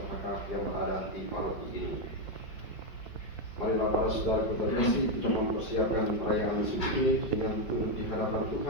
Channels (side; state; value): right; late; 5.2 ms